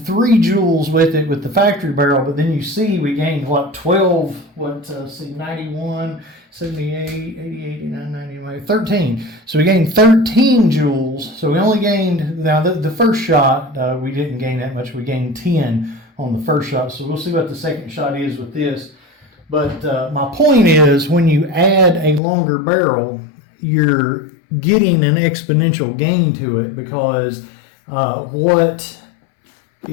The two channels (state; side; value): drops out; right; at 22.2 s